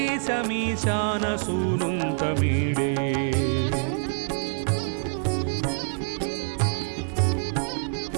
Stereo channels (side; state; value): left; silent; 61 dB below the other